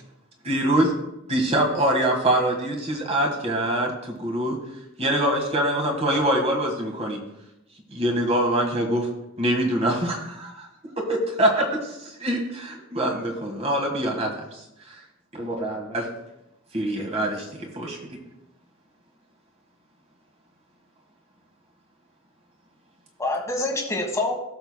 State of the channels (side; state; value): both; normal; correlation 0.28